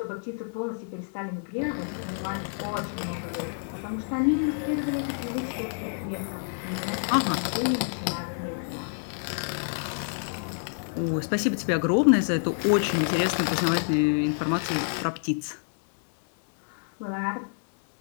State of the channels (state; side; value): silent; right; 59 dB below the other